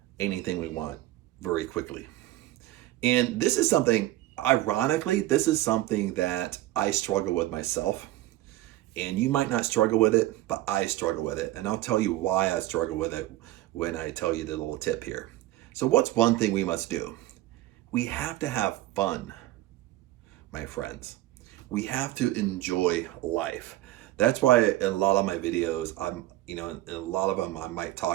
anything we want very quickly? And this is something, ironically, this is something that I struggle with myself. And you might not struggle with it, but I struggle with it. And I'll tell you why I struggle with it when I tell you the little tip here. So what's one thing we must do? We have to have fun, my friends. We have to enjoy life. That's why in a lot of my videos, in a lot of them, I might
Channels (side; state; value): left; quieter; 16.0 dB